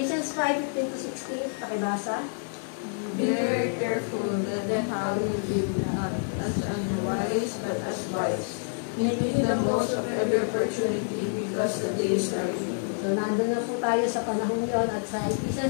5:15-16, pakibasa. Be very careful that then how you live, not as unwise, but as wise, making the most of every opportunity because the days are evil. So nandun na po tayo sa panahon yon at sa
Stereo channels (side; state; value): right; silent; digital silence